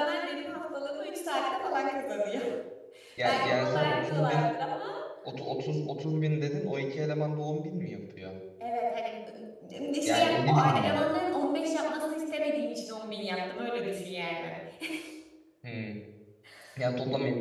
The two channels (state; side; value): identical; both; correlation 1.00